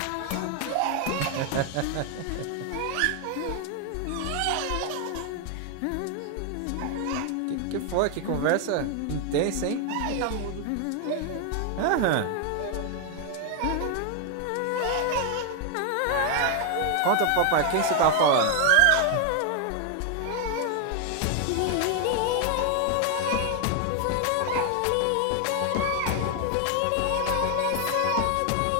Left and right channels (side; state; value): both; different; correlation 0.00